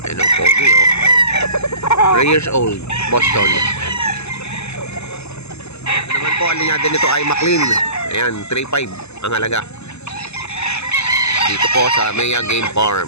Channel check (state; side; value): late; right; 0.80 ms